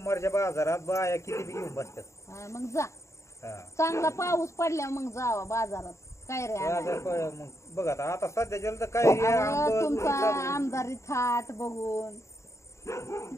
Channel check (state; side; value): late; right; 0.14 ms